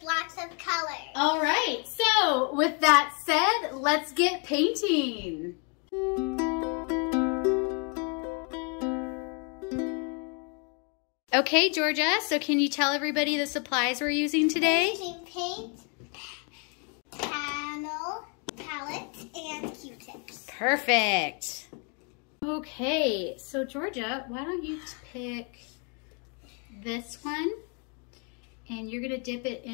lots of colors. All right. So with that said, let's get painting. Okay, Georgia, so can you tell everybody the supplies we're using today? We're using paint, panel, palettes, and Q-tips. Perfect. Okay, so Georgia, why don't you pick this one, and you're gonna dip it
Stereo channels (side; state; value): right; quieter; 36.7 dB